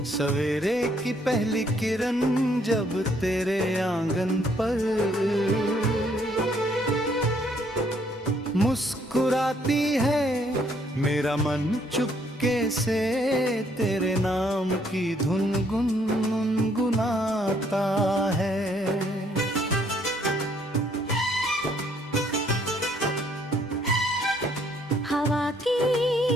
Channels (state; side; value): normal; both; correlation 0.67